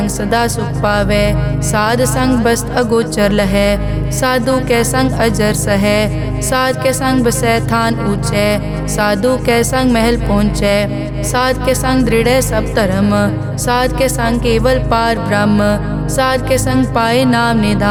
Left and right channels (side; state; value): both; identical; correlation 1.00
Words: सदा सुख पावै। साध संग बस्त अगोचर लहै, साधु के संग अजर सहै। साध के संग बसै थान ऊंचै, साधु के संग महल पहुँचै। साध के संग दृढ़ सब धर्म, साध के संग केवल पार ब्रह्म। साध के संग पाए नाम